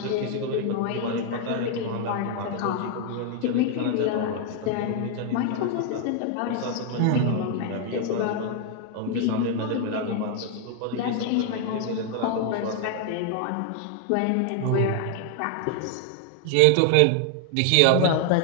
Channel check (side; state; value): both; different; correlation 0.00